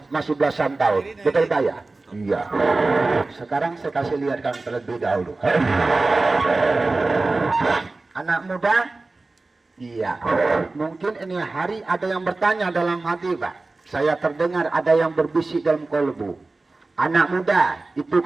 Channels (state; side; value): quieter; left; 3.4 dB